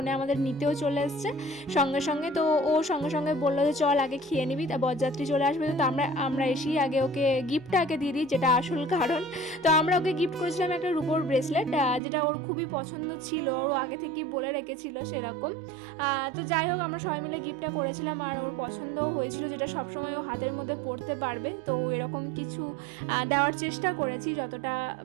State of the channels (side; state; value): left; drops out; at 12.0 s